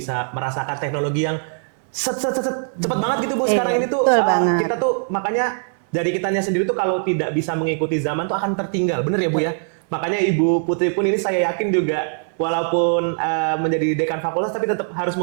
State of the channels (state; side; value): silent; left; 65 dB below the other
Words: merasakan teknologi yang cepat banget gitu Bu. Sekarang ini tuh kita tuh makanya dari kitanya sendiri tuh kalau tidak bisa mengikuti zaman tuh akan tertinggal. Bener ya Bu ya? Makanya Ibu Putri pun ini saya yakin juga walaupun menjadi dekan fakultas tapi tetap harus